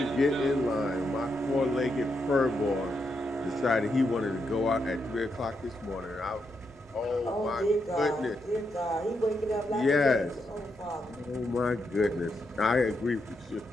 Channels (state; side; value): normal; both; correlation 0.82